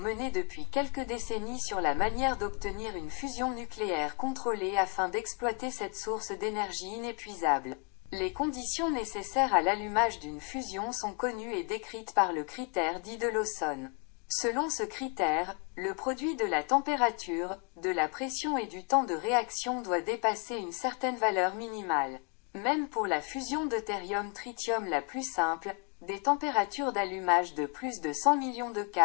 depuis quelques décennies sur la manière d'obtenir une fusion nucléaire contrôlée afin d'exploiter cette source d'énergie inépuisable. Les conditions nécessaires à l'allumage d'une fusion sont connues et décrites par le critère dit de Lawson. Selon ce critère, le produit de la température, de la pression et du temps de réaction doit dépasser une certaine valeur minimale. Même pour la fusion deutérium-tritium la plus simple, des températures d'allumage de plus de 100 millions de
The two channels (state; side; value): quieter; right; 36.0 dB